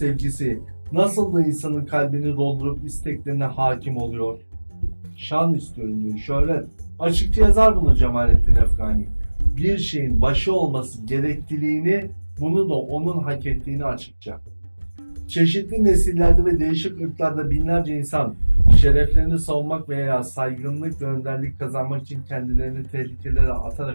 nasıl da insanın kalbini doldurup isteklerine hakim oluyor. Şan istiyorum diyor, şöhret. Açıkça yazar bunu Cemalettin Efgani. Bir şeyin başı olması gerekliliğini, bunu da onun hak ettiğini açıkça. Çeşitli nesillerde ve değişik ırklarda binlerce insan şereflerini savunmak veya saygınlık ve önderlik kazanmak için kendilerini tehlikelere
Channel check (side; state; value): both; inverted; correlation -1.00